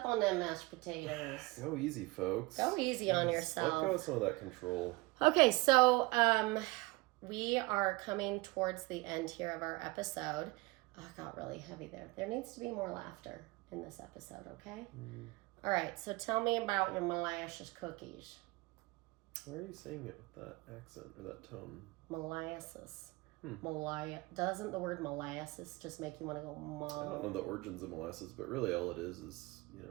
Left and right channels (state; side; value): quieter; left; 23.2 dB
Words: on them mashed potatoes. Go easy, folks. Go easy on yourself. Let go of some of that control. Okay, so we are coming towards the end here of our episode. Oh, it got really heavy there. There needs to be more laughter in this episode, okay? Mm. All right, so tell me about your molasses cookies. Why are you saying it with that accent or that tone? Molasses. Doesn't the word molasses just make you want to go I don't know the origins of molasses, but really all it is